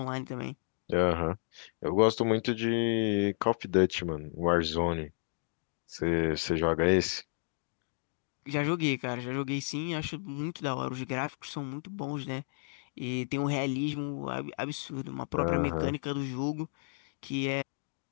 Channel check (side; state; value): right; silent; digital silence